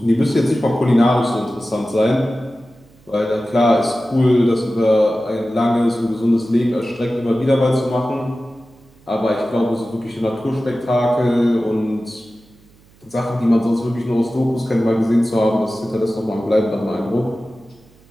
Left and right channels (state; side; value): noise; right; hum, 29 dB below the sound